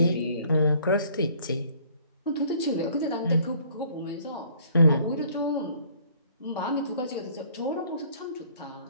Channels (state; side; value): inverted; both; correlation -0.59